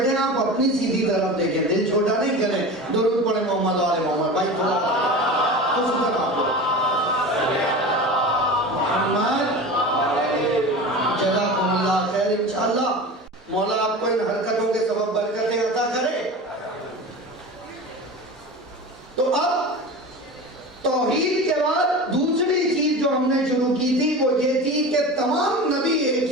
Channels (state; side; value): normal; both; correlation 0.31